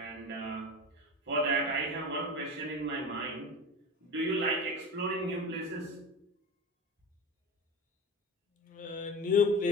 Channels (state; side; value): normal; both; correlation 0.29